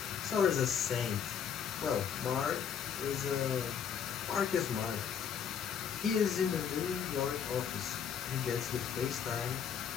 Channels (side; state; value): right; quieter; 7.8 dB